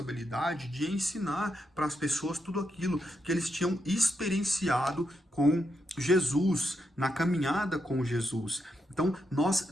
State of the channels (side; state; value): both; normal; correlation 0.83